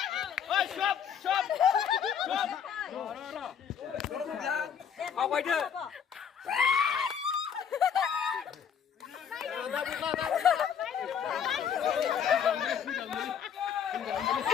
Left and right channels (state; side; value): quieter; right; 7.8 dB